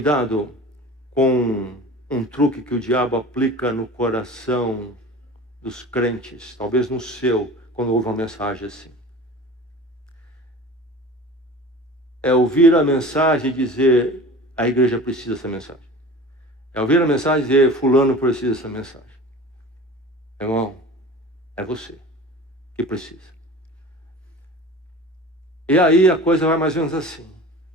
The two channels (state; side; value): normal; both; correlation 0.38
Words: com um truque que o diabo aplica no coração dos crentes, talvez no seu, quando ouve uma mensagem assim. É ouvir a mensagem e dizer, a igreja precisa dessa mensagem. É ouvir a mensagem e dizer, fulano precisa dessa mensagem. Irmão, é você que precisa. E aí a coisa vai mais ou menos assim.